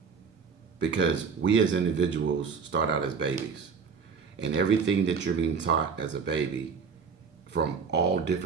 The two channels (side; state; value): left; quieter; 5.7 dB